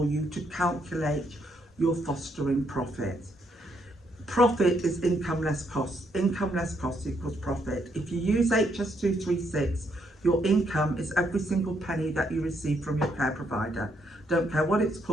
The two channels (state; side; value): normal; both; correlation 0.74